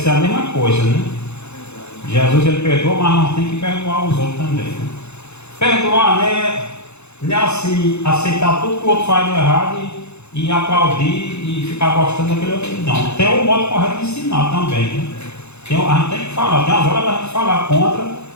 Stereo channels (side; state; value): right; late; 0.81 ms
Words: a mesma coisa, né? Jesus ele perdoa, mas nós temos que perdoar os outros também, né? Perdoar, né? Não é assim, aceitar tudo que o outro faz de errado e aplaudir e ficar gostando daquele outro. Não, tem o modo correto de ensinar também, né? A gente tem que falar, tem as horas da gente falar contra